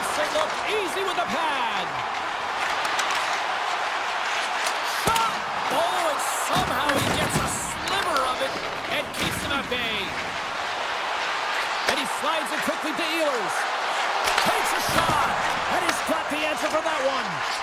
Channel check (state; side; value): identical; both; correlation 1.00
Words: it look easy with the pad. Shot. Oh, and somehow he gets a sliver of it and keeps him at bay. And he slides it quickly to Ehlers. Takes a shot. And he's got the answer for that one.